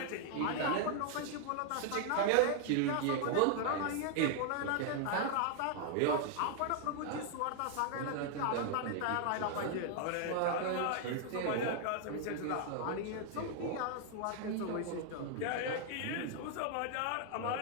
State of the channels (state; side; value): different; both; correlation 0.00